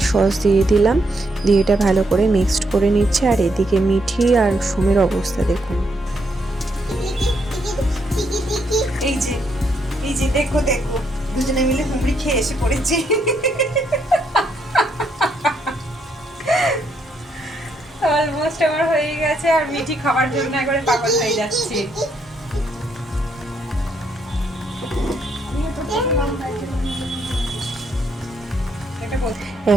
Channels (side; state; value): both; normal; correlation 0.76